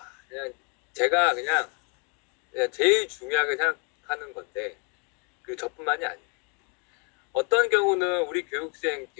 그냥 제가 그냥 제일 중요하게 생각하는 건데 그 저뿐만이 아니에요. 어떤 경우는 우리 교육생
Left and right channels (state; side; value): quieter; right; 36.1 dB